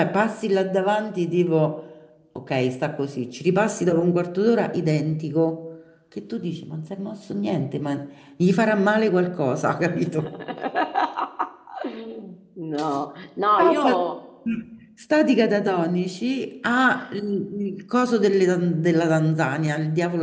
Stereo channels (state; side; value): identical; both; correlation 1.00